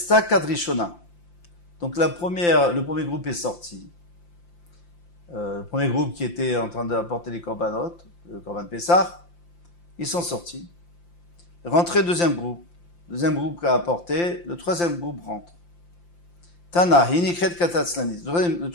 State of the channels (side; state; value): right; late; 5.8 ms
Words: Kadrishona. Donc le premier groupe est sorti. Le premier groupe qui était en train d'apporter les korbanot, le korban Pessah, ils sont sortis. Rentré deuxième groupe qui a apporté, le troisième groupe rentre. Tana, Hinikret Katatzlanis. Le